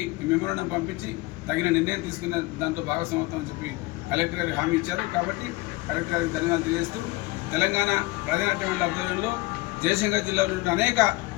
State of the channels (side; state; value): right; quieter; 21.6 dB